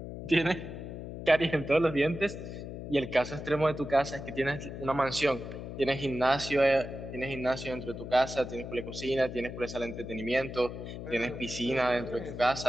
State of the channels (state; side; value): noise; left; hum, 9 dB below the sound